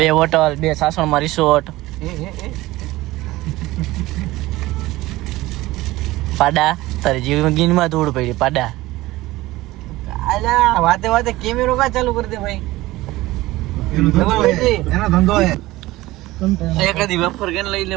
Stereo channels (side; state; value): left; quieter; 18.3 dB